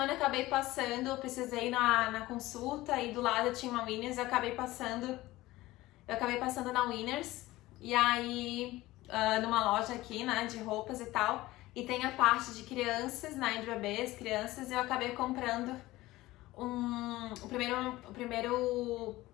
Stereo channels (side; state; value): right; quieter; 17.9 dB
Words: eu acabei passando, eu precisei ir na consulta e do lado tinha uma Winners, eu acabei passando na Winners. E aí, numa loja aqui, né, de roupas e tal, e tem a parte de crianças, né, de bebês, crianças, e eu acabei comprando o primeiro